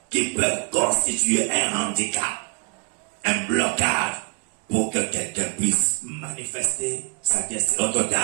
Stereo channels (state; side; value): quieter; left; 37.1 dB